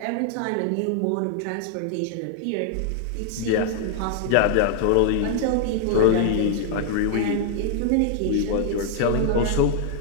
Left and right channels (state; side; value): different; both; correlation 0.00